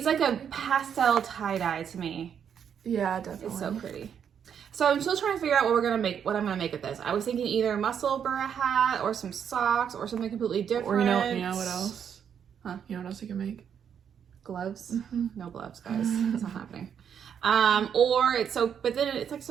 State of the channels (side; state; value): left; quieter; 8.1 dB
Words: like a pastel tie-dye to me. Yeah, definitely. It's so pretty. So I'm still trying to figure out what I'm gonna make with this. I was thinking either a muscle burra hat or some socks or something completely different. Or you know what else? Huh? You know what else you can make? Gloves? No gloves, guys. That's not happening. But then it's like